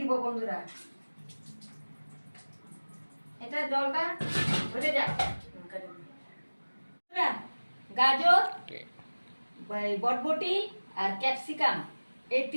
বন্ধুরা। এটা জলটা ঝরে যাক। গাজর, বরবটি আর ক্যাপসিকাম এই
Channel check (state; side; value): inverted; both; correlation -1.00